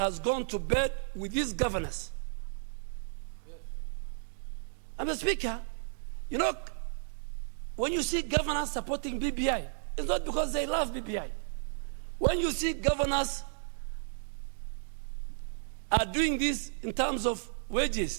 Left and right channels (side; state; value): left; silent; digital silence